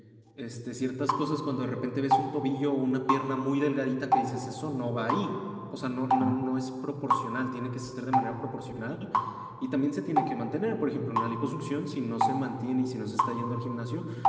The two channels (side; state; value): both; identical; correlation 1.00